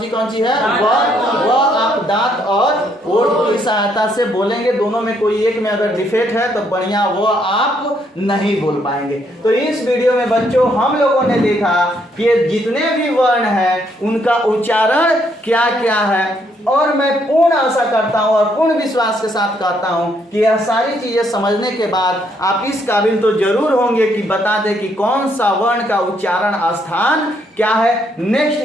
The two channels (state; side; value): normal; both; correlation 0.72